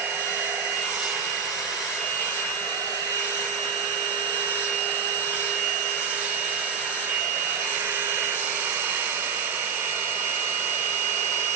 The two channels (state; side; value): quieter; left; 6.5 dB